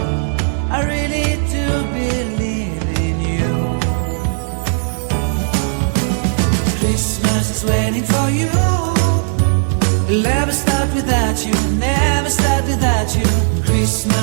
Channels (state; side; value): silent; left; 65 dB below the other